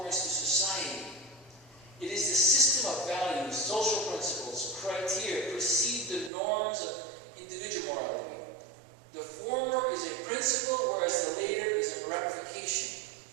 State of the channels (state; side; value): drops out; left; at 6.3 s